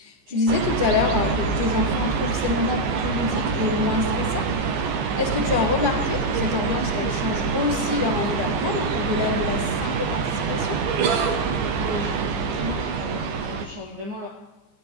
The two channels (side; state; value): left; late; 15 ms